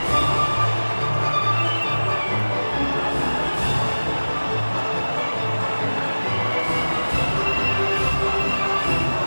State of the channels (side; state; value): both; inverted; correlation -1.00